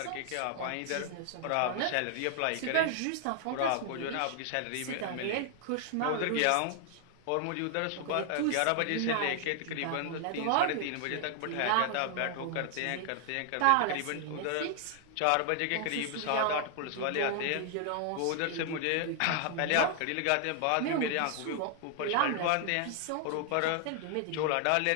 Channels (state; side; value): different; both; correlation 0.00